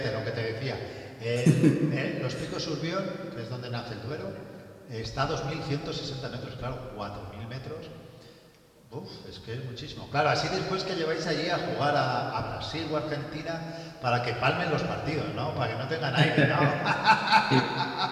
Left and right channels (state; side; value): identical; both; correlation 1.00